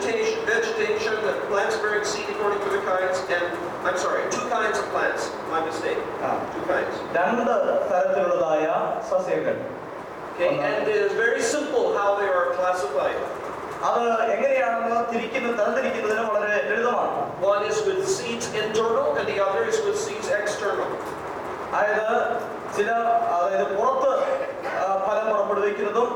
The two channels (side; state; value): both; identical; correlation 1.00